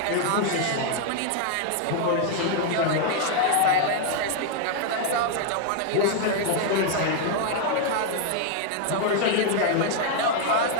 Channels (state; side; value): different; both; correlation 0.00